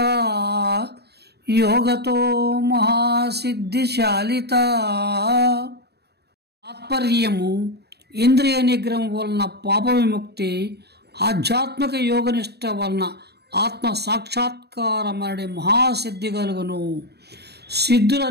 యోగతో మహాసిద్ధిశాలిత. తాత్పర్యము: ఇంద్రియ నిగ్రహం వలన పాప విముక్తి, ఆధ్యాత్మిక యోగనిష్ట వలన ఆత్మ సాక్షాత్కారమనే మహాసిద్ధి కలుగును.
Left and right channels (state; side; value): late; left; 0.48 ms